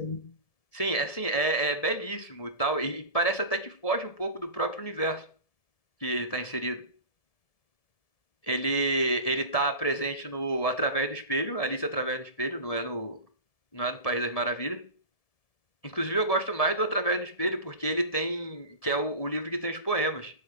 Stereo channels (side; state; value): right; late; 1.7 ms